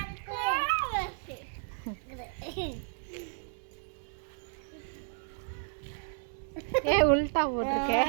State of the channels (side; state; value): left; silent; digital silence